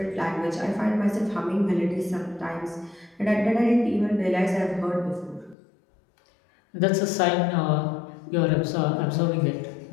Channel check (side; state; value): right; drops out; at 5.6 s